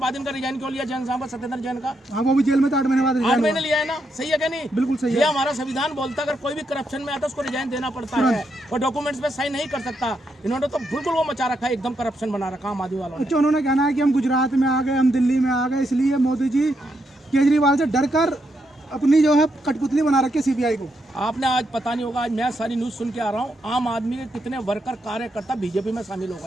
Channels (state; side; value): normal; both; correlation 0.80